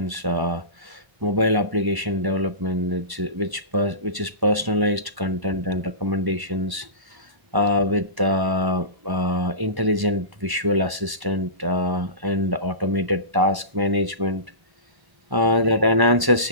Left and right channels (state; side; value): late; left; 1.0 ms